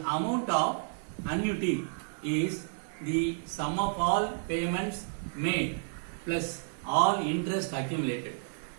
of annuity is the sum of all payments made plus all interest accumulated.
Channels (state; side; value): silent; left; digital silence